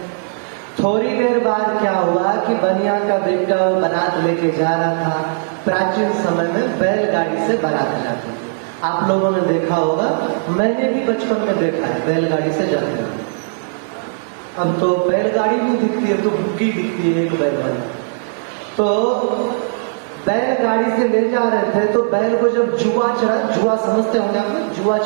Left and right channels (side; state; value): left; silent; digital silence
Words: थोड़ी देर बाद क्या हुआ कि बनिया का बेटा बारात लेके जा रहा था। प्राचीन समय में बैलगाड़ी से बारात जाती, आप लोगों ने देखा होगा, मैंने भी बचपन में देखा है बैलगाड़ी से जाते हैं। अब तो बैलगाड़ी नहीं दिखती है, तो बुग्गी दिखती है एक बैलगाड़ी। तो बैलगाड़ी से ले जा रहे थे, तो बैल को जब जुआ समझते होंगे आप, जुआ